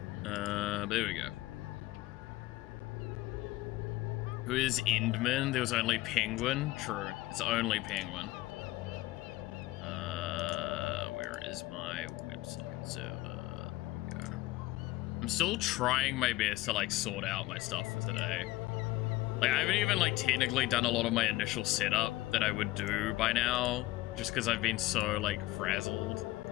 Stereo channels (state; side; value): quieter; right; 18.1 dB